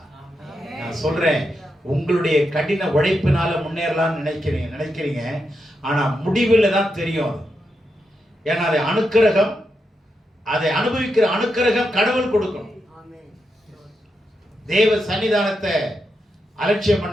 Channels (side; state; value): both; normal; correlation 0.85